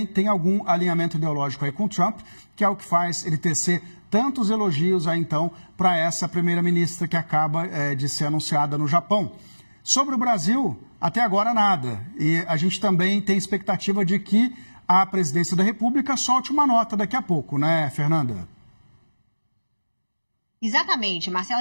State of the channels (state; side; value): inverted; both; correlation -1.00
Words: tem algum alinhamento ideológico aí com o Trump, que é o que faz ele tecer tantos elogios aí, então, para essa primeira-ministra que acaba de ser anunciada no Japão. Sobre o Brasil, até agora nada. E a gente também tem expectativa de que a presidência da República solte uma nota daqui a pouco, né, Fernanda? Exatamente, Marcela.